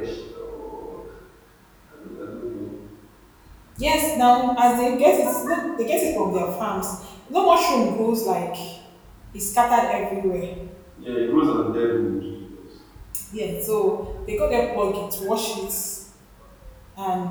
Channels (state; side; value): identical; both; correlation 1.00